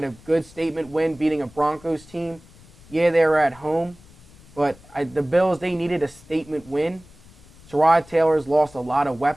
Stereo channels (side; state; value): left; noise; rumble, 24 dB below the sound